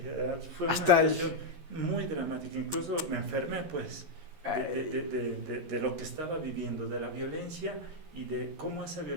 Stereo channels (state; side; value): late; left; 11 ms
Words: fue una hasta situación muy dramática, incluso me enfermé pues de lo que estaba viviendo, de la violencia y de cómo esa